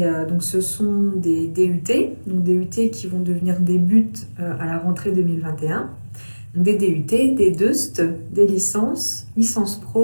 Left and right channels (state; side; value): inverted; both; correlation -1.00